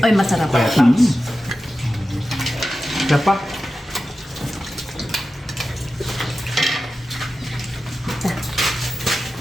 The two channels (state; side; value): normal; both; correlation 0.93